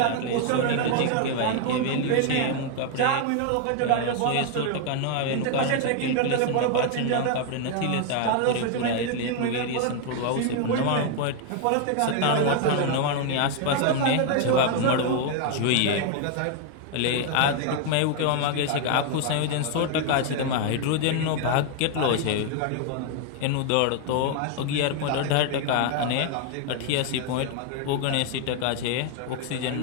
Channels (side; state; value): both; different; correlation 0.00